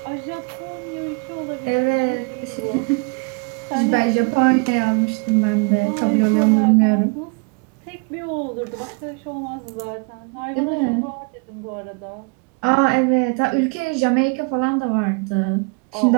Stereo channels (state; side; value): quieter; left; 31.2 dB